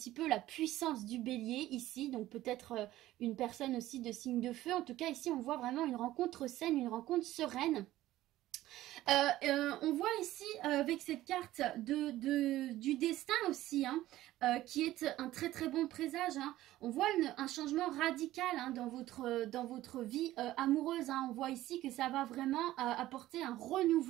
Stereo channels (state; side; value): quieter; left; 15.2 dB